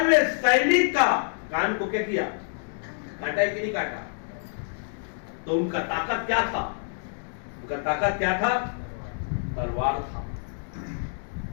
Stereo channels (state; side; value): silent; right; digital silence